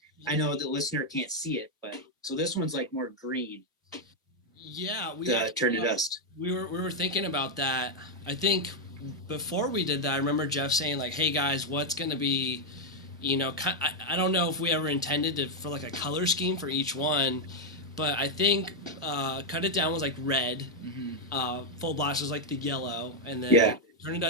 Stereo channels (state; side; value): normal; both; correlation 0.00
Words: I know the listener can't see it, but so this one's like more green. Yeah, Turn to Dust. We were thinking about that. I think before we did that, I remember Jeff saying like, "Hey guys, what's gonna be, you know, I don't know if we ever intended for like a color scheme for each one, but I think Cut It Down was like red, Full Blast was like the yellow, and then Turn to